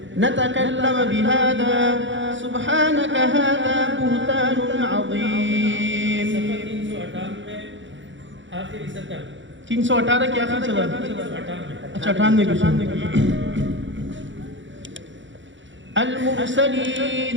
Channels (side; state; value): left; late; 0.55 ms